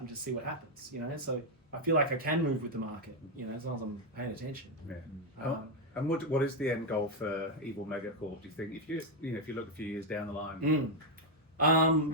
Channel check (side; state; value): both; normal; correlation 0.02